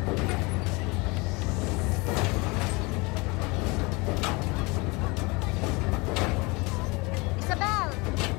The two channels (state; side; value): quieter; right; 26.2 dB